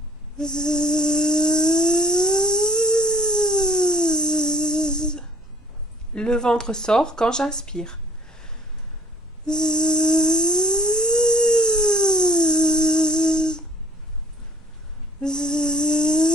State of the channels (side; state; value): both; normal; correlation 0.54